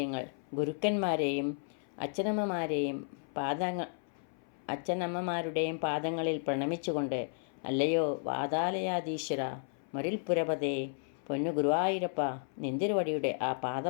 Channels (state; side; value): silent; right; 56 dB below the other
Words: ഗുരുക്കന്മാരെയും അച്ഛനമ്മമാരുടെയും പാദങ്ങളിൽ പ്രണമിച്ചുകൊണ്ട്, അല്ലയോ വാതാലയാധീശ്വര, മരുൽപുരപതേ, പൊന്നു ഗുരുവായൂരപ്പ, നിന്തിരുവടിയുടെ ആ